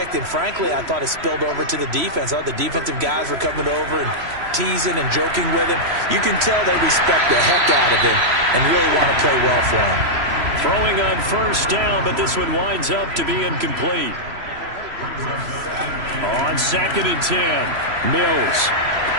and frankly, I thought it spilled over to the defense. I thought the defensive guys were coming over and teasing and joking with him. You can tell they respect the heck out of him and really want to play well for him. Throwing on first down, but this one winds up to be incomplete. On 2nd and 10, Mills.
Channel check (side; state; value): left; late; 3.0 ms